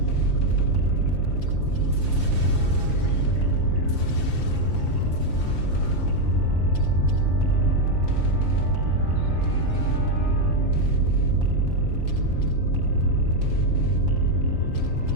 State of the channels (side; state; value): right; late; 5.8 ms